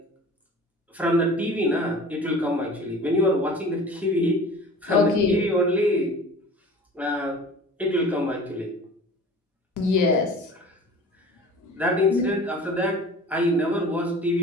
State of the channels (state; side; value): normal; both; correlation 0.41